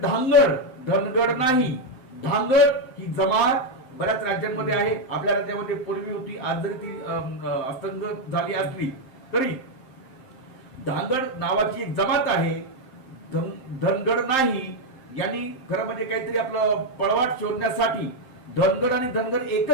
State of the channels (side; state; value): right; late; 7.6 ms